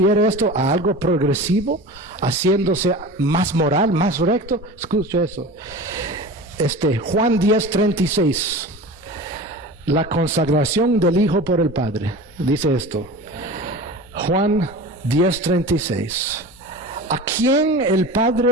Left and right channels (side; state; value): both; normal; correlation 0.34